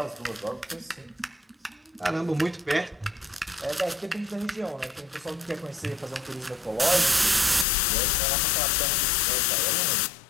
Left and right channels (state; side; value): drops out; right; at 7.7 s